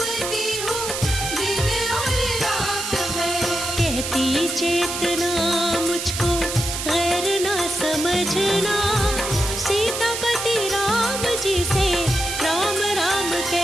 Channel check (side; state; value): right; noise; hiss, 4 dB below the sound